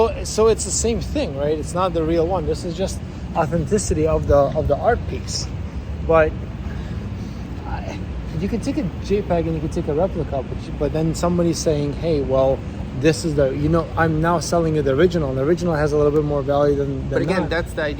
it's the same thing, right? It's not the real one. This is just authenticity of the art piece. But you can take a JPEG and you can take a replica, but then somebody's saying, hey, well, this is I'm now selling you the original, and the original has a little bit more value than But again, that. that's the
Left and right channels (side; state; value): both; identical; correlation 1.00